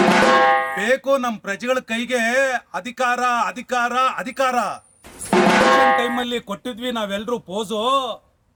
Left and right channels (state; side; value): identical; both; correlation 1.00